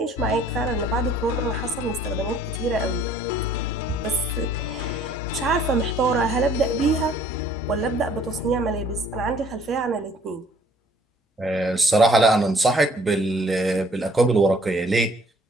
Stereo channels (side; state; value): both; normal; correlation 0.58